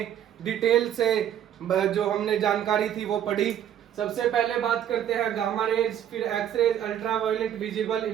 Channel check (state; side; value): quieter; left; 10.2 dB